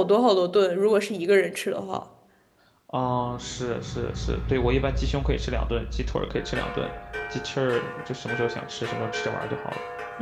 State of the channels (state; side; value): identical; both; correlation 1.00